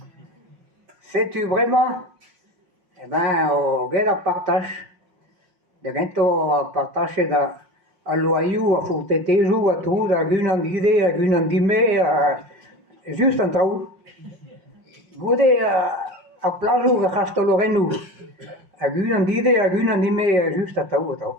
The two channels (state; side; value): late; left; 5.5 ms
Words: Se tu vraiment eh ben o gera partage. De gento partage da a loiu, a furteteju, a tu, a gun an dide, a gun an dime, just an trau. Gode a plaju a chasto lorenu, a gun an dide, a gun an dime, just a trau, a